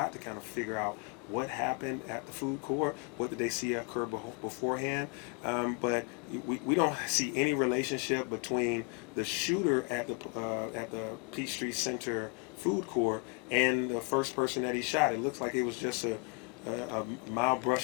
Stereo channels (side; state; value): right; quieter; 33.3 dB